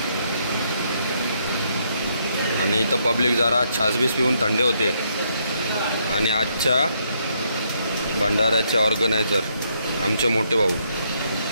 आणि इथं पब्लिक जरा छासबीस पिऊन थंडे होते। आणि आजच्या भंडाऱ्याचे ऑर्गनायझर आमचे मोठे भाऊ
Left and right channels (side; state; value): both; inverted; correlation -0.74